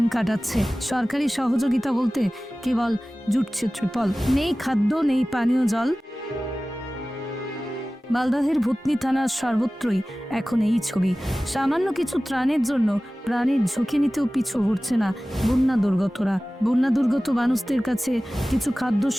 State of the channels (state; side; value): normal; both; correlation 0.97